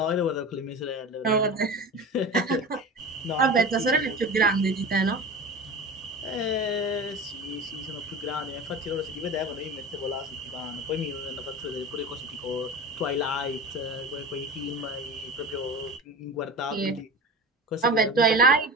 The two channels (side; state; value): both; normal; correlation 0.32